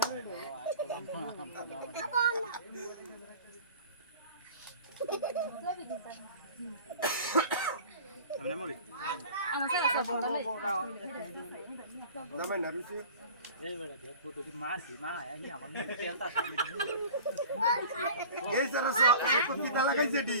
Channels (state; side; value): inverted; both; correlation -0.42